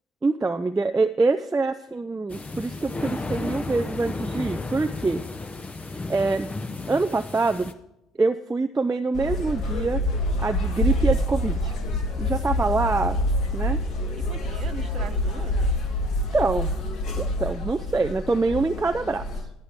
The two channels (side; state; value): both; normal; correlation 0.66